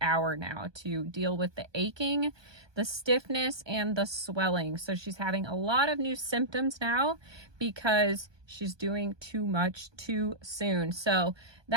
now to deal with the aching, the stiffness, and the swelling. So she's having a lot of new symptoms now because she's doing too much too soon. So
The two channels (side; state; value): left; late; 1.2 ms